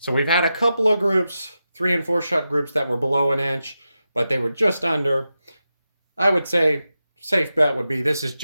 we've had a couple of groups, 3 and 4 shot groups that were below an inch, but they were just under. I would say safe bet would be this is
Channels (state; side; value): inverted; both; correlation -0.90